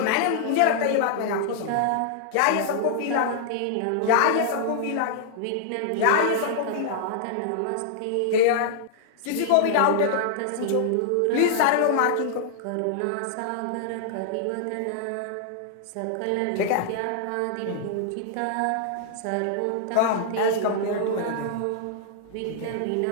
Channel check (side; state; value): both; different; correlation -0.01